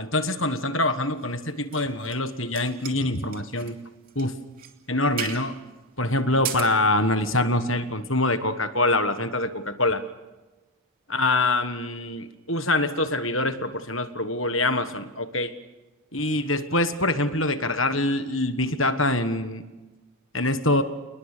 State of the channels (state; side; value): normal; both; correlation 0.12